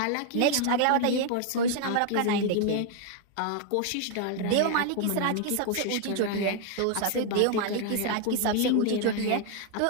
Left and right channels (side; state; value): both; different; correlation 0.00